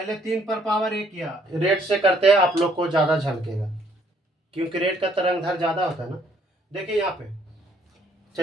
3 पर पावर 1 किया, रेड से करते हैं आप लोग को ज़्यादा झलकेगा क्योंकि रेड का तरंग धर ज़्यादा होता है ना। देखिए यहाँ पे,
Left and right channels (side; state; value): both; normal; correlation 0.66